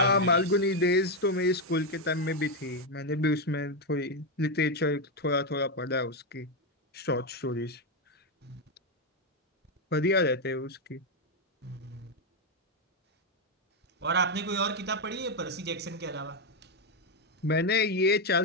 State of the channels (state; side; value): normal; both; correlation 0.04